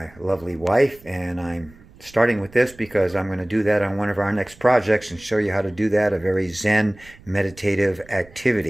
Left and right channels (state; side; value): noise; right; rumble, 24 dB below the sound